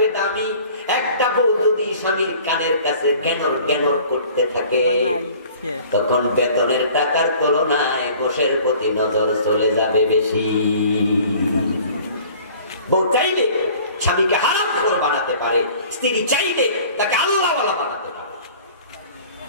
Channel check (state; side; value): inverted; both; correlation -0.48